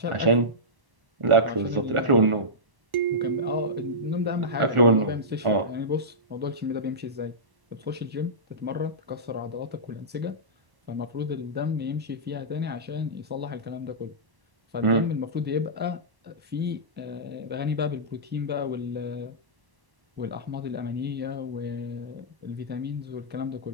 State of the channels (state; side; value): late; left; 1.1 ms